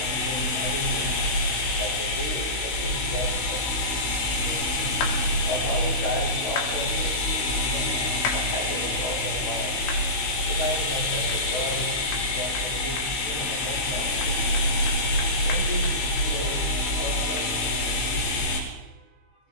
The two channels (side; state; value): right; late; 16 ms